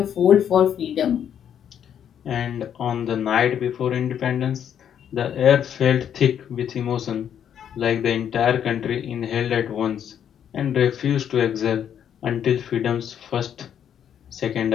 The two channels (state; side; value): quieter; right; 9.1 dB